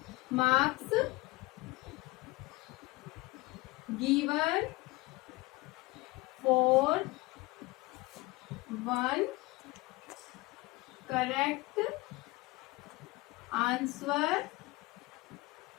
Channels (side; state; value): right; quieter; 22.5 dB